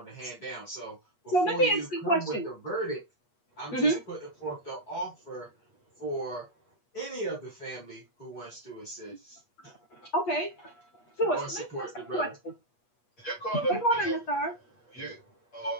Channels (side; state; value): right; late; 8.3 ms